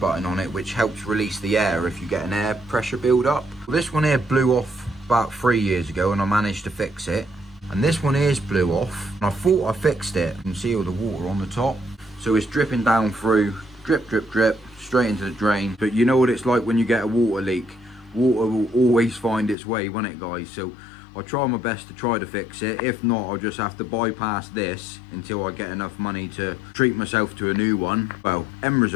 on it which helps release the air if you get an air pressure build up. Well, this one here blew off about 3 years ago and I managed to fix it. And this one here's blew off, and I thought I fixed it. You can see all the water on the top. So it's dripping down through, drip, drip, drip, straight into the drain. But you know what it's like when you get a water leak. Water will always find its way, won't it guys? So I'll try my best to try to fix it. If not, I'll just have to bypass this until I get enough money to treat myself to a new one. Well, end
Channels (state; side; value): drops out; right; at 19.6 s